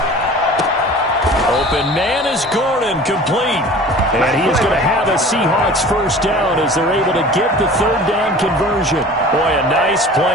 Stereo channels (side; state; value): both; normal; correlation 0.42